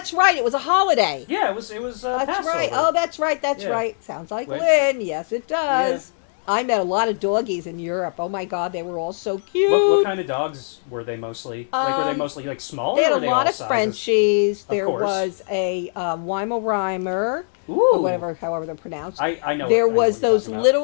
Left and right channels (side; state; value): right; silent; 65 dB below the other